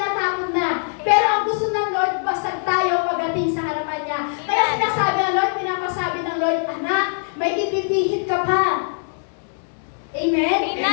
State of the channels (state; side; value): silent; right; 63 dB below the other